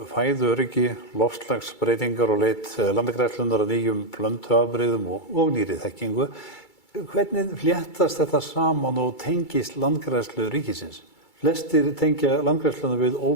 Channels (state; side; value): late; right; 2.3 ms